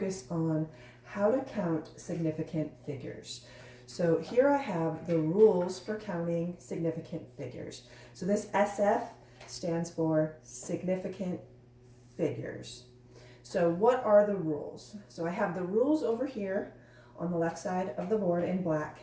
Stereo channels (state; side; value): identical; both; correlation 1.00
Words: on how to count significant figures. So here I have the rules for counting significant figures. So this SF stands for significant figures. So what are the rules? So I have the rules over here on the left side of the board in black,